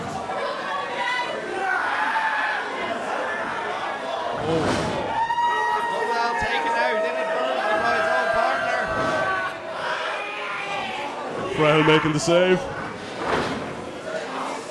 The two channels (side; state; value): both; identical; correlation 1.00